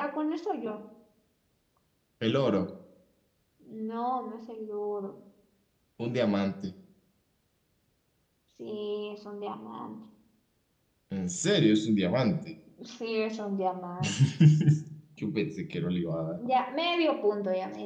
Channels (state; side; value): identical; both; correlation 1.00